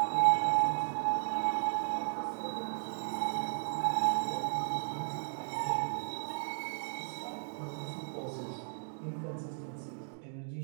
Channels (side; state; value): left; silent; digital silence